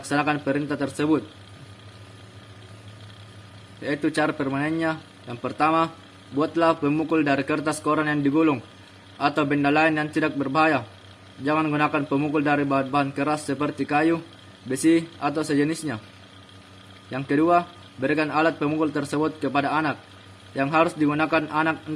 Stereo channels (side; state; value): both; identical; correlation 1.00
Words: perintah tersebut. Yaitu cara permainannya. Yang pertama, buatlah pemukul dari kertas koran yang digulung atau benda lain yang tidak berbahaya. Jangan gunakan pemukul dari bahan-bahan keras seperti kayu, besi, atau sejenisnya. Yang kedua, berikan alat pemukul tersebut kepada anak, yang harus digunakan anak